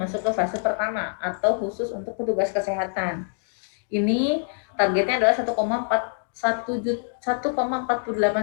ke fase pertama atau khusus untuk petugas kesehatan. Ini targetnya adalah 1,48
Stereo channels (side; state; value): right; silent; 62 dB below the other